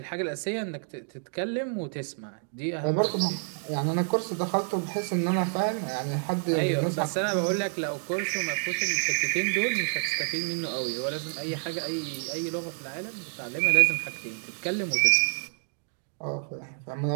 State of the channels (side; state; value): left; silent; 59 dB below the other